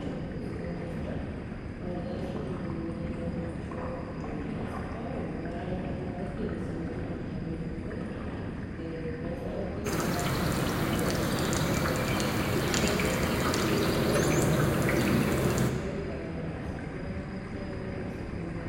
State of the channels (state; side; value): identical; both; correlation 1.00